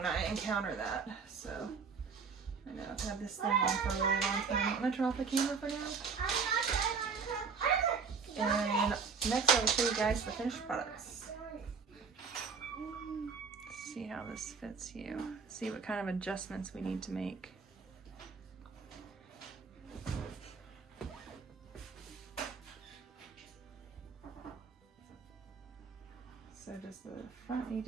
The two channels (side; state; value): left; quieter; 5.4 dB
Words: I encounter that. So I know I've had this thing on for a really long time. I'm gonna turn off the camera for now. And next I will show you guys the finished products. See how this fits you. See what kind of adjustments we need to make. So does the front need